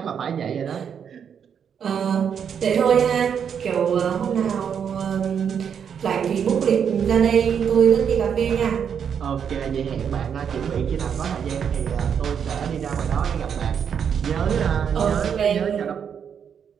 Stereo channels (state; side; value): quieter; left; 7.6 dB